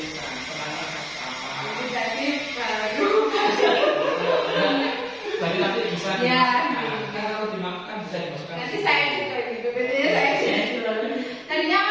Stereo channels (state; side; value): identical; both; correlation 1.00